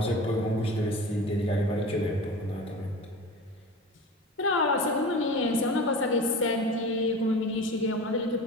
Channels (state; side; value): normal; both; correlation 0.34